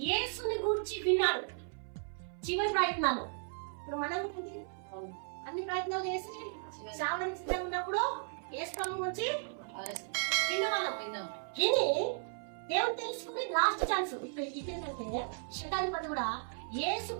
యేసుని గురించి విన్నాడు. చివరి ప్రయత్నాలు. ఇప్పుడు మనం అన్ని ప్రయత్నాలు చేసి చావడానికి సిద్ధంగా ఉన్నప్పుడు యేసు ప్రభు గురించి విన్నవాళ్ళం. విని దేవుడు తెలుసుకుని లాస్ట్ ఛాన్స్ ఇదేంటంటే శతాధిపతి కూడా యేసు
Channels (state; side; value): silent; left; 54 dB below the other